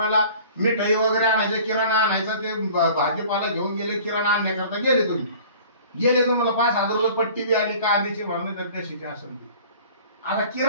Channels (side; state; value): both; inverted; correlation -0.46